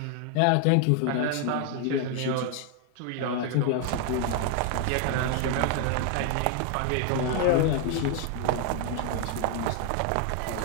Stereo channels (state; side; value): different; both; correlation 0.00